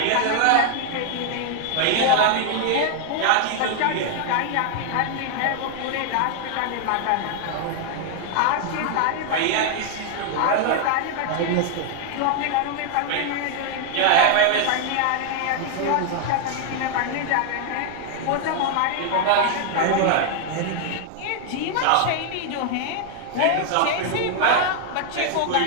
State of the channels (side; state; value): both; different; correlation 0.00